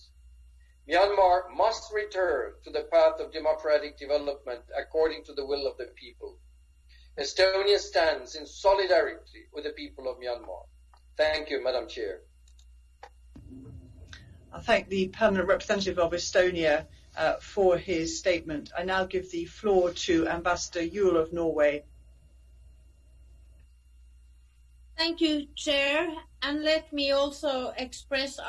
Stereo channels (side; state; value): both; identical; correlation 1.00